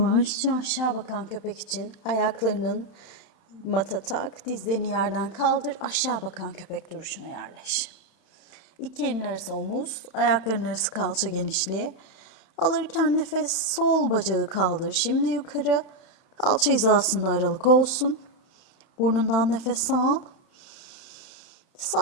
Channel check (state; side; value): late; right; 31 ms